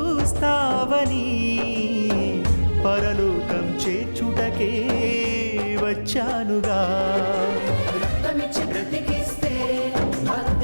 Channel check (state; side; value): inverted; both; correlation -1.00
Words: పరలోకం చేర్చుటకే వచ్చానుగా.